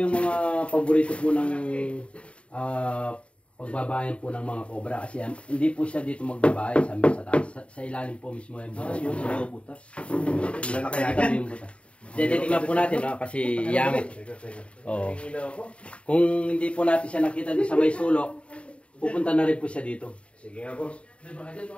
mga paborito po ng pagbabayan po ng mga cobra kasi hindi po siya dito magbabae sa taas. Sa ilalim po mismo yung butas. Yung butas. Wala na kaya yung butas. Titignan po natin kasi yamit. Oo. Kung hindi po natin siya nakita din sa may sulok, pupunta na rin po siya dito. Sige nga boss.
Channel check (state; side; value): late; right; 0.060 ms